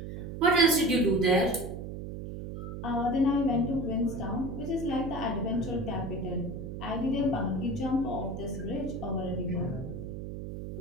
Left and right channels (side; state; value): right; noise; hum, 7 dB below the sound